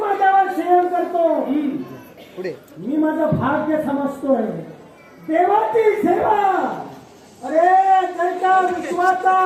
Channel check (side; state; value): both; identical; correlation 1.00